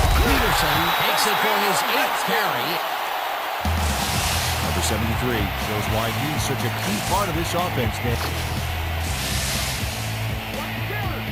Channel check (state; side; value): identical; both; correlation 1.00